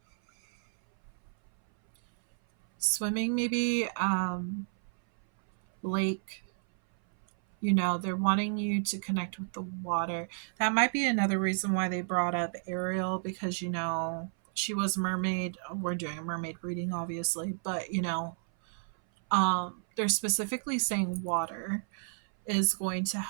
swimming, maybe, lake. They're wanting you to connect with the water. That might be another reason why they brought up Ariel, because she was a mermaid. We're doing a mermaid reading, obviously, but they're specifically saying water is going to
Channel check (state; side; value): silent; left; 57 dB below the other